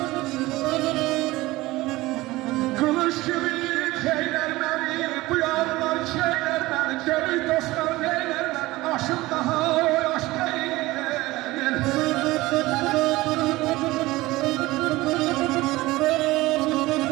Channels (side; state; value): left; quieter; 19.3 dB